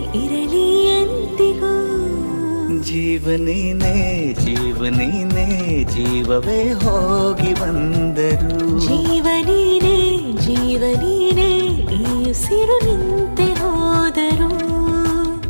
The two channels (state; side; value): inverted; both; correlation -1.00